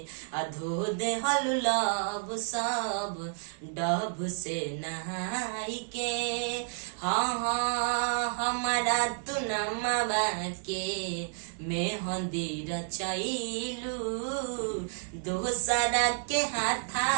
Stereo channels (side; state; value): left; silent; digital silence